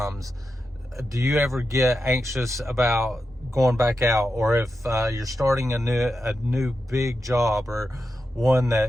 do you ever get anxious about going back out? Or if you're starting a new big job, or one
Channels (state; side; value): normal; both; correlation 0.89